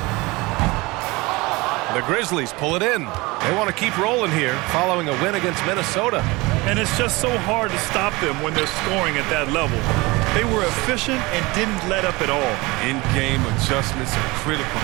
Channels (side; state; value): left; quieter; 23.2 dB